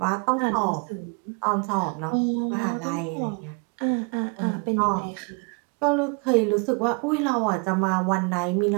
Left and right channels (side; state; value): left; quieter; 33.5 dB